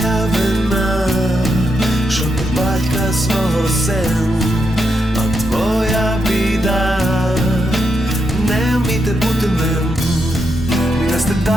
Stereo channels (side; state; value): both; normal; correlation 0.83